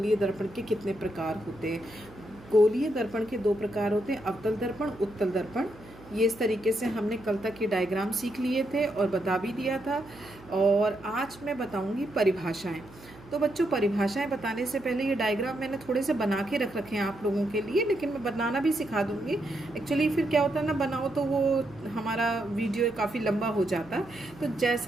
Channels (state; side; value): noise; right; hum, 21 dB below the sound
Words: दर्पण के कितने प्रकार होते हैं। गोलीय दर्पण के दो प्रकार होते हैं, अवतल दर्पण, उत्तल दर्पण। ये इस तरीके से हमने कल तक की डायग्राम सीख लिए थे और बता भी दिया था। और आज मैं बताऊंगी परिभाषाएं। तो बच्चों, परिभाषाएं बताने से पहले ये डायग्राम मैंने थोड़े से बना के रख रखे हैं आप लोगों के लिए, लेकिन मैं बनाना भी सिखा दूंगी। एक्चुअली फिर क्या होता है ना, बनाओ तो वो हमारा वीडियो काफ़ी लंबा हो जाता। तो